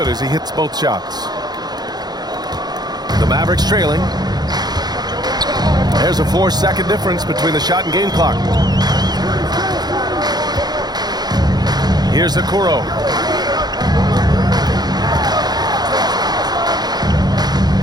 as he hits both shots. The Mavericks trailing. There's a 4-second difference between the shot and game clock. Here's Okoro.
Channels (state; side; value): late; left; 0.20 ms